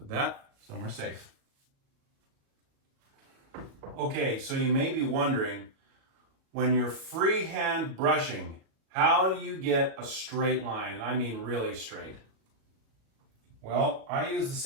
that somewhere safe. Okay, so you may be wondering, when you're freehand brushing, how do you get a straight line? And I mean really straight. Well, I use the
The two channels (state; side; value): late; left; 37 ms